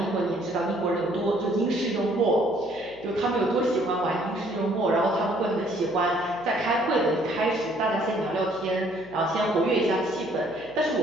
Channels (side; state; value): left; noise; hum, 23 dB below the sound